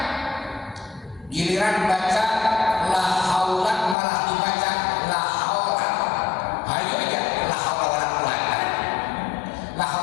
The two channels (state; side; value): drops out; right; at 4.0 s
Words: Giliran baca la haula malah dibaca la haula. Ayo aja la haula wala quwata. La